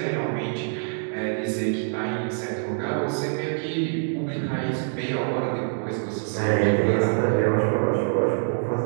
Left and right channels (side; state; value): left; silent; digital silence